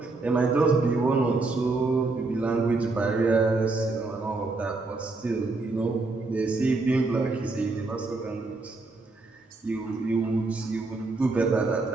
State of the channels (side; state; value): left; quieter; 3.5 dB